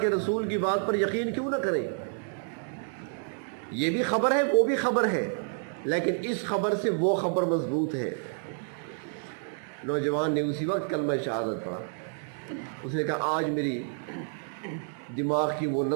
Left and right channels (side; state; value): left; silent; 58 dB below the other